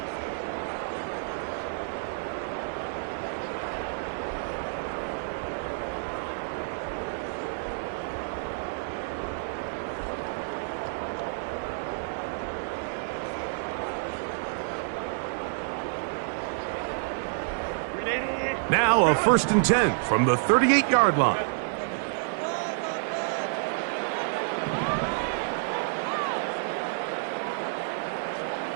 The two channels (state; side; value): silent; left; digital silence